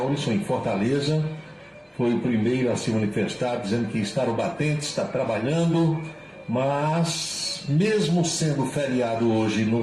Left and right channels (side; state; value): both; identical; correlation 1.00